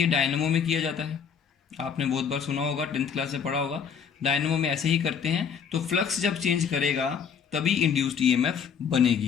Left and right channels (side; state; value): right; quieter; 6.9 dB